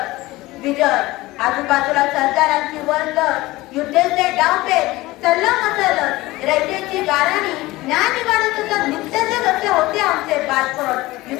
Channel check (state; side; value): quieter; right; 19.3 dB